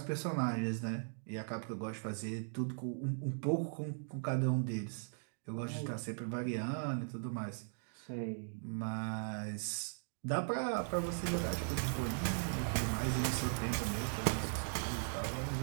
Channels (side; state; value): left; silent; digital silence